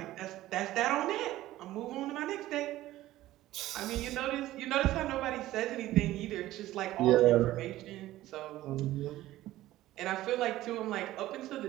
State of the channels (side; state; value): left; quieter; 15.4 dB